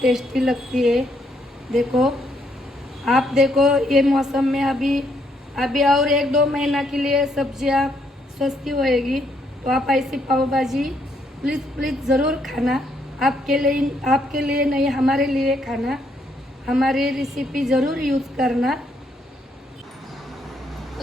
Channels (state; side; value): normal; both; correlation 0.73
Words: टेस्टी लगती है। देखो आप देखो ये मौसम में अभी और 1-2 महीना के लिए सब्जियां सस्ती होएगी। तो आप ऐसी पाव भाजी प्लीज़ ज़रूर खाना। आपके लिए नहीं, हमारे लिए खाना। हमारी रेसिपी ज़रूर यूज़ करना।